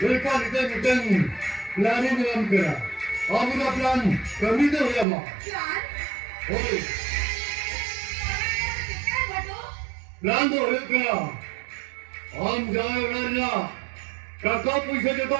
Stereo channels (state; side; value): drops out; left; at 5.1 s